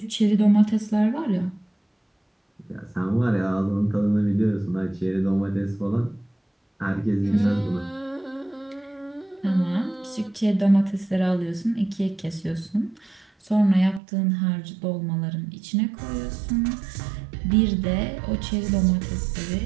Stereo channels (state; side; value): drops out; left; at 14.0 s